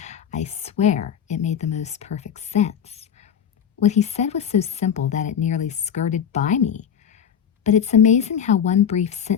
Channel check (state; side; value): quieter; right; 8.3 dB